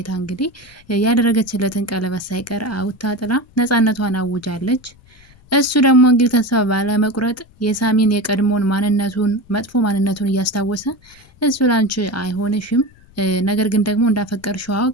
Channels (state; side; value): noise; left; rumble, 27 dB below the sound